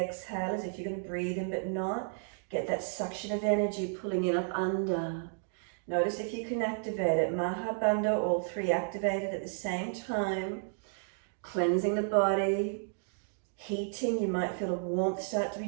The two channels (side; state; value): left; silent; digital silence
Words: as if you're going to breathe in but not. Get that suction of energy pulling in up under. Notice if you can activate it. Maha Bandha, all three activated at the same time. Cleansing the body, heating. You might feel a warmth start to be